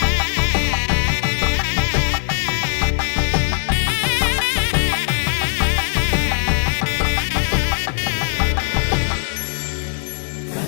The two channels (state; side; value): silent; right; 66 dB below the other